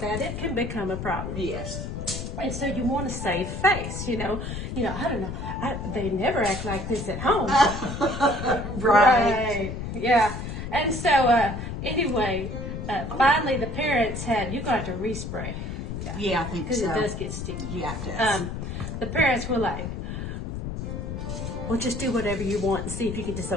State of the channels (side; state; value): left; noise; rumble, 5 dB below the sound